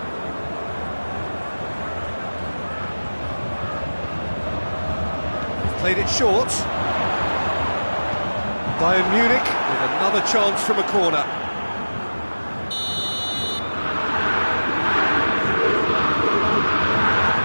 Played it short. Bayern Munich with another chance from a corner.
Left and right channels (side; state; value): both; inverted; correlation -1.00